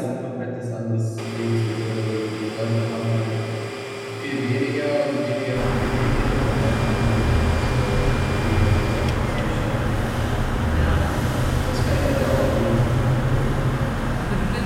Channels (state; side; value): identical; both; correlation 1.00